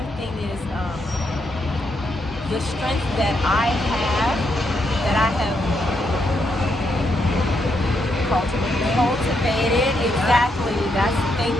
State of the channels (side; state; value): both; normal; correlation 0.79